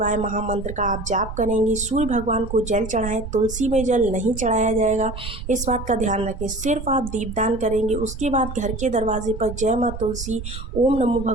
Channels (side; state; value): right; noise; rumble, 9 dB below the sound